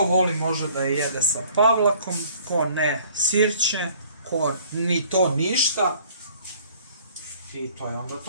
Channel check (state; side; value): inverted; both; correlation -0.56